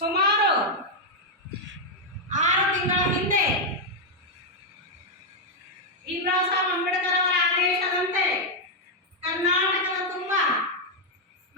6 ತಿಂಗಳ ಹಿಂದೆ ಭೀಮರಾವ್ ಸಾಹೇಬ್ ಅಂಬೇಡ್ಕರ್ ಅವರ ಆದೇಶದಂತೆ ಕರ್ನಾಟಕದ ತುಂಬ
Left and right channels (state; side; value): normal; both; correlation -0.01